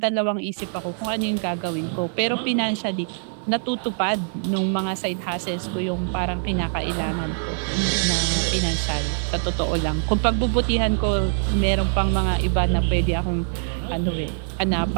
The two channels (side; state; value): left; silent; digital silence